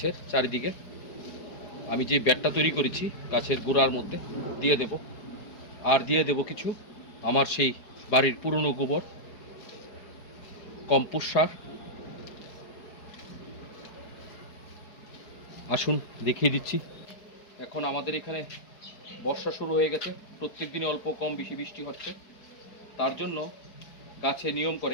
চারিদিকে আমি যে ব্যাটটা তৈরি করেছি গাছের গোড়ার মধ্যে দিয়ে দেব। আর দিয়ে দেব কিছু আমার সেই বাড়ির পুরনো গোবর, কম্পোস্ট সার। আসুন দেখিয়ে দিচ্ছি। এখন আমাদের এখানে বর্ষা শুরু হয়ে গেছে, প্রত্যেক দিনই অল্প কম বেশি বৃষ্টি হচ্ছে। তার জন্য গাছে নিয়ম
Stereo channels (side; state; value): right; late; 4.9 ms